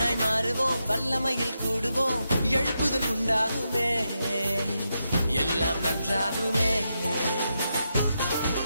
மாறுவோம், வல்லமையில் கூடுவோம், எழுப்புதல் உண்டாகுமே, எல்லாம் நன்றாகுமே.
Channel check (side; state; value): both; inverted; correlation -0.85